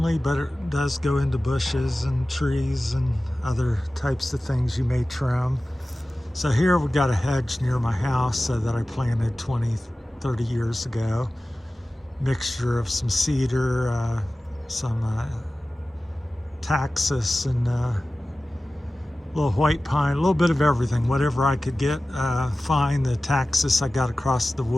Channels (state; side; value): normal; both; correlation 0.96